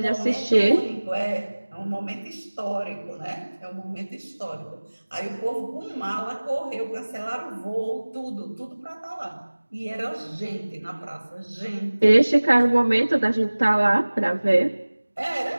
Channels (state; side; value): inverted; both; correlation -1.00